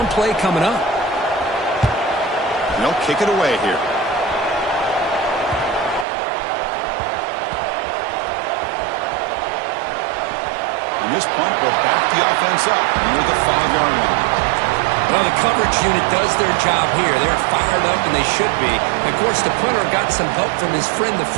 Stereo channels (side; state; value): left; drops out; at 6.1 s